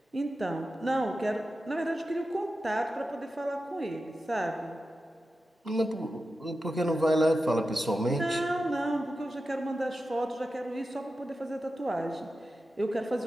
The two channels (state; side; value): normal; both; correlation 0.92